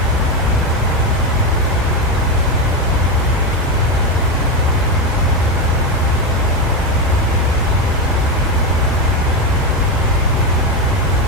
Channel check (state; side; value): normal; both; correlation 0.11